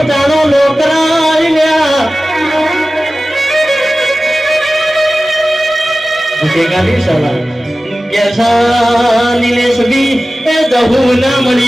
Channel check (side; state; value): both; normal; correlation 0.96